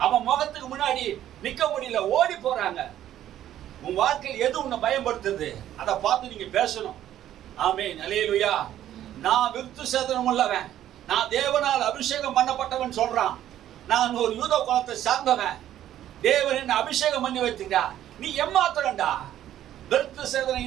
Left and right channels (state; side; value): quieter; left; 11.9 dB